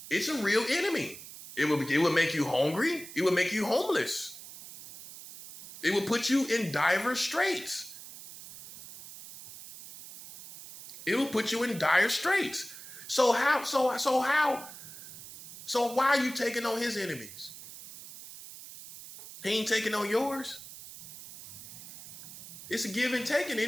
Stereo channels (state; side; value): noise; right; hiss, 15 dB below the sound